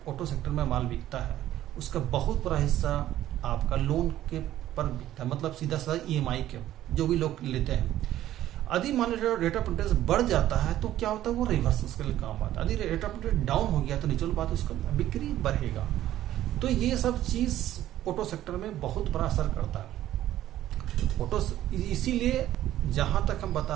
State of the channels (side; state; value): left; quieter; 13.2 dB